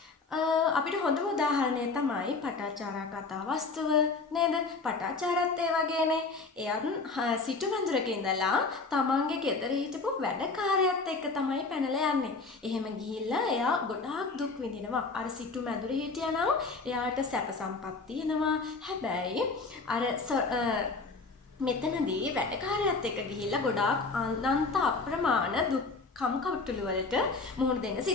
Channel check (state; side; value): quieter; right; 4.0 dB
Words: අපිට හොඳම උදාහරණය තමයි පටාචාරා කතා වස්තුව නේද? පටාචාරත් ඒ වගේනේ. එයන් සිටු මැදුරක ඉඳලා තමන්ගේ ගෙදර හිටපු වැඩකාරයත් එක්ක තමයි පැනලා යන්නේ. එහෙම ගිහිල්ලා එයා ගොඩාක් දුක් විඳිනවා. අර සිටු මැදුරේ හිටියනම් එයාට සැප සම්පත් තියෙනවා. හැබැයි අර මෙතනදී වැඩකාරයත් එක්ක ගිහිල්ලා ගොඩාක් අනන්ත අප්‍රමාණ දුක් කම්කටොළු වලට මුහුණ දෙන්න